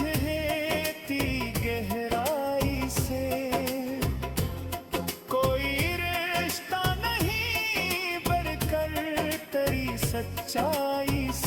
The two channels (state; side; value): identical; both; correlation 1.00